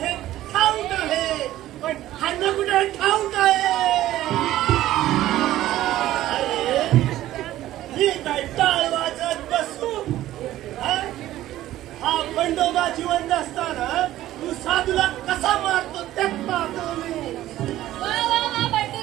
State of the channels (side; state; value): left; quieter; 14.3 dB